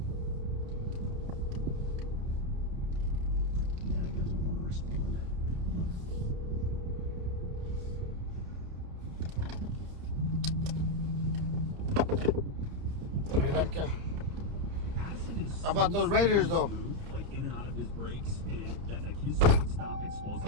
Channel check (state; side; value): late; left; 30 ms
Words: Yeah, he doesn't want to respond. How about those Raiders, though? Like in and out of his breaks, and that like his stop